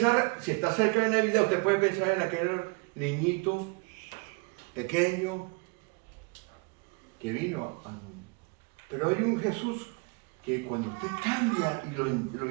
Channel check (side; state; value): left; quieter; 30.5 dB